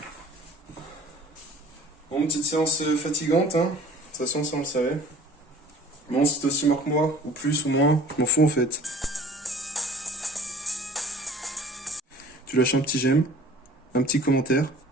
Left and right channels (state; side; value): normal; both; correlation 0.48